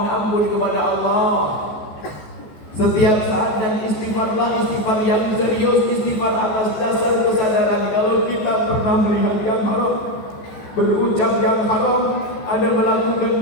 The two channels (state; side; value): late; right; 14 ms